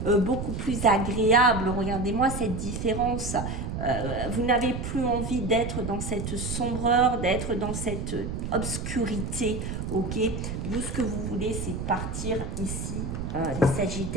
beaucoup plus agréable. Regardez-moi cette différence. Vous n'avez plus envie d'être dans cette sombreur, d'être dans cette obscurité. Ok, vous, ce que vous voulez, c'est partir ici, les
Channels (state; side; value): noise; right; rumble, 5 dB below the sound